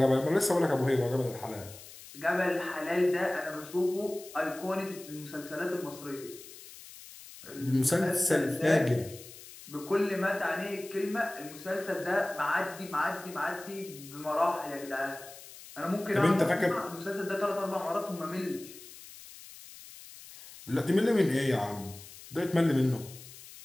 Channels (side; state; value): left; noise; hiss, 17 dB below the sound